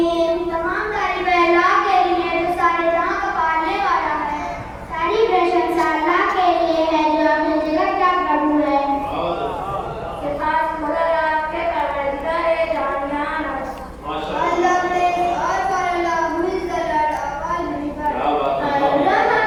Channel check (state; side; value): identical; both; correlation 1.00